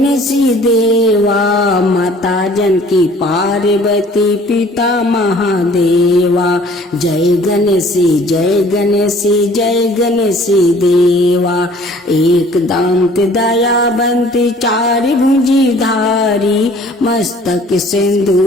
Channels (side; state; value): both; normal; correlation 0.53